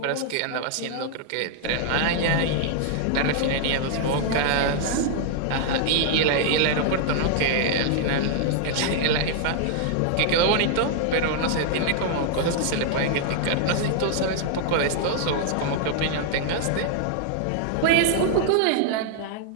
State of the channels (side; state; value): both; different; correlation -0.01